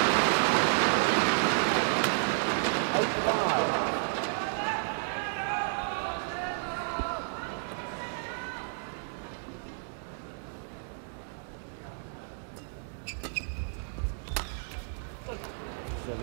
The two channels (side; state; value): left; silent; digital silence